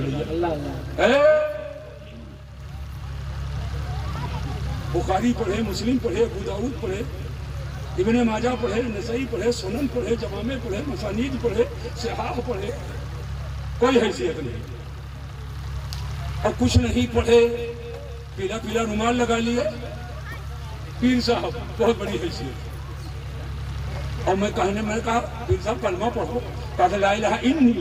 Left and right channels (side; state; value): both; identical; correlation 1.00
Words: ہے۔ بخاری پڑھے، مسلم پڑھے، ابو داؤد پڑھے، ابن ماجہ پڑھے، نسائی پڑھے، سنن پڑھے، جوامع پڑھے، مسانید پڑھے، صحاح پڑھے، کوئی حیثیت نہیں۔ اور کچھ نہیں پڑھے، پیلا پیلا رومال لگا لیے، پیر صاحب بہت بڑی حیثیت۔ اور میں کہا پیر صاحب کلمہ پڑھو، کہا لا الہ الا